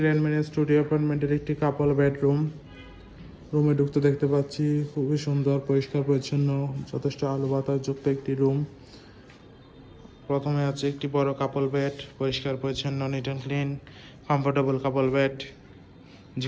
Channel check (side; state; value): both; identical; correlation 1.00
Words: গ্র্যান্ড মেরিন স্টুডিও অ্যাপার্টমেন্টের একটি কাপল বেডরুম। রুমে ঢুকতে দেখতে পাচ্ছি খুবই সুন্দর, পরিষ্কার পরিচ্ছন্ন, যথেষ্ট আলো বাতাস যুক্ত একটি রুম। প্রথমে আছে একটি বড় কাপল বেড, পরিষ্কার পরিচ্ছন্ন, neat and clean, comfortable couple bed,